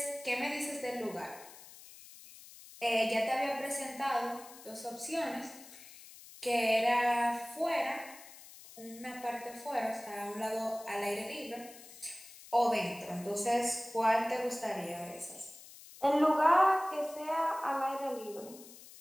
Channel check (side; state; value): left; noise; hiss, 18 dB below the sound